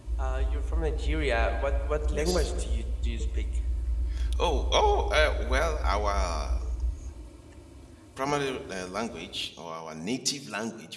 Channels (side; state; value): both; identical; correlation 1.00